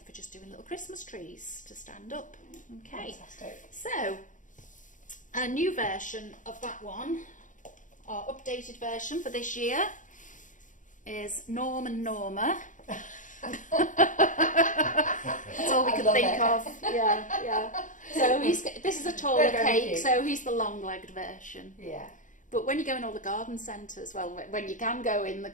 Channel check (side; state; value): right; late; 0.37 ms